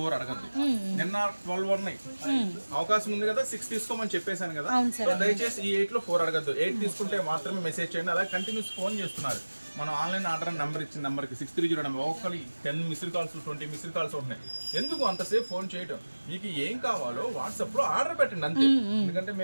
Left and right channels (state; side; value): inverted; both; correlation -1.00